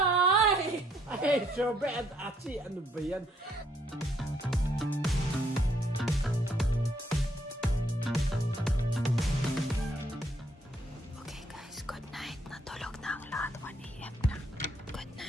Ay, Shobe at Achi, ano ba yan? Okay guys, good night. Natulog na ang lahat. 1 AM na. Good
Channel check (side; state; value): both; normal; correlation 0.69